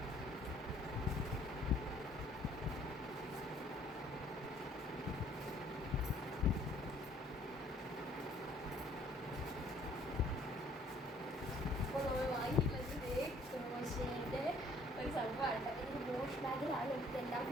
ഒരു സംഭവമാണ്. ഇത് വാഷ് ബാഗിലാണ് എനിക്കെല്ലാം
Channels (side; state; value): both; normal; correlation 0.59